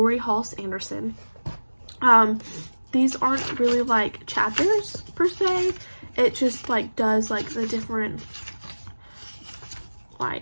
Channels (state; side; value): inverted; both; correlation -1.00